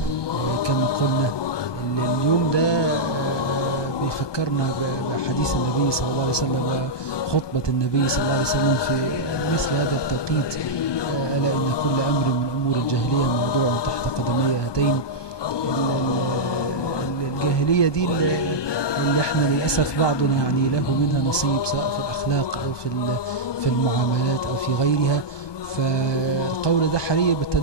كما قلنا. اليوم ده بيفكرنا بحديث النبي صلى الله عليه وسلم وخطبة النبي صلى الله عليه وسلم في مثل هذا التوقيت، ألا إن كل أمر من أمور الجاهلية موضوع تحت قدمي هاتين. الجاهلية دي اللي احنا للأسف بعضنا يعني له منها نصيب، سواء في الأخلاق أو في المعاملات أو في غيرها. فالقول ده حري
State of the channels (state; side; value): late; right; 1.2 ms